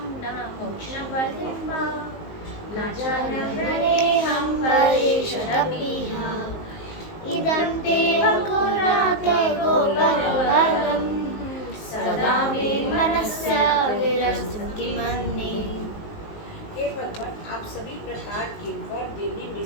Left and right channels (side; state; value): right; late; 19 ms